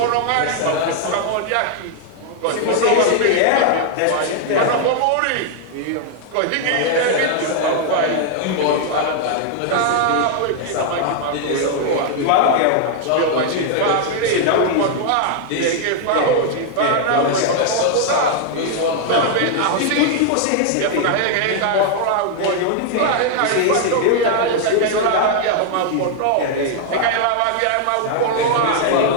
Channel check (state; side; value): different; both; correlation 0.00